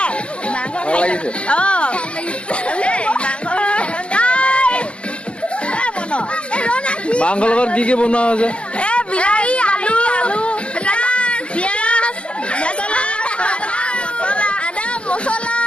ভাল লাগিছে? মাংসৰ লগত কি কি বনোৱা হৈছে? বিলাহী, আলু, পিয়াজ, আদা, মছলা,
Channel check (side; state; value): right; late; 0.053 ms